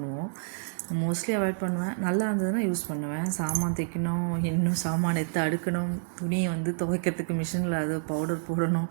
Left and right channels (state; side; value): silent; left; digital silence